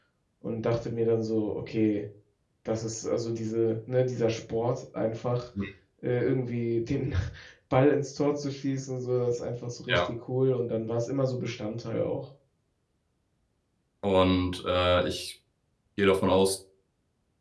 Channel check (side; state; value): both; identical; correlation 1.00